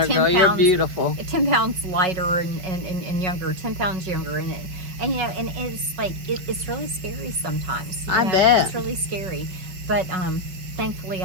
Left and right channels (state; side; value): late; left; 5.3 ms